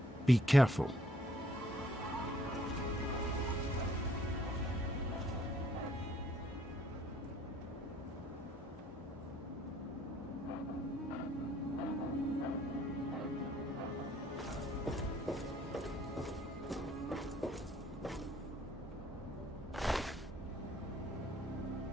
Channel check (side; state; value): both; normal; correlation 0.64